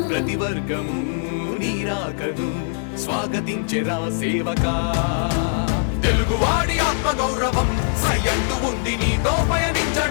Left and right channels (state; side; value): silent; right; 61 dB below the other